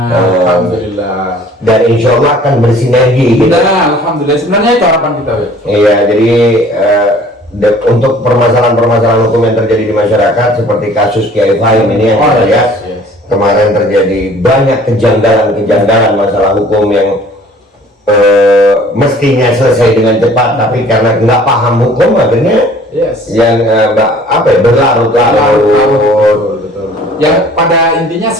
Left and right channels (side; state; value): both; normal; correlation 0.52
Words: Alhamdulillah. Dan insya Allah akan bersinergi gitu. Nah, alhamdulillah. Sebenarnya itu harapan kita ya. Iya, jadi untuk permasalahan-permasalahan hukum yang terjadi di masyarakat seperti kasus Kiai Fahim ini yang kita lihat kemarin terjadi banyak kejanggalan masalah hukum yang mestinya selesai dengan cepat, tapi karena nggak paham hukum akhirnya yang berlarut-larut. Betul. Yang pada intinya